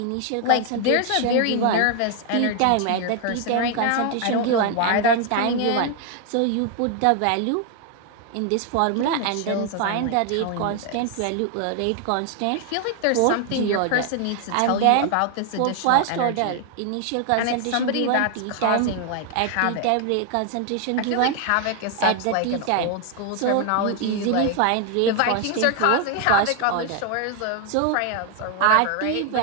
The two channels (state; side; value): different; both; correlation 0.00